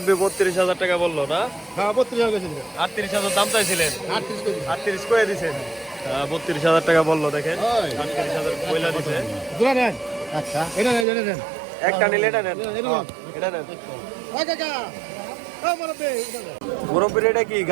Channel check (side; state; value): left; drops out; at 11.1 s